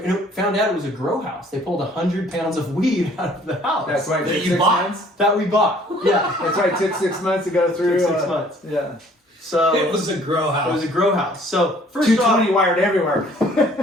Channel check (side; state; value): both; normal; correlation 0.57